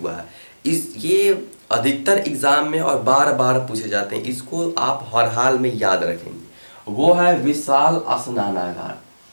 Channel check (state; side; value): inverted; both; correlation -1.00